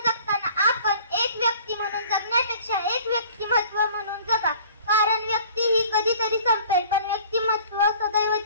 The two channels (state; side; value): inverted; both; correlation -0.49